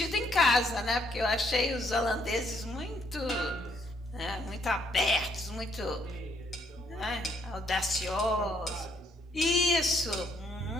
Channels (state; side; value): normal; both; correlation 0.70